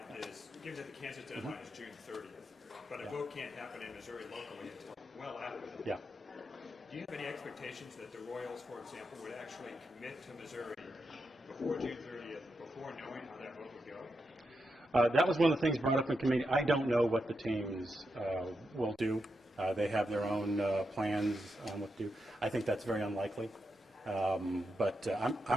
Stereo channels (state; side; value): normal; both; correlation 0.85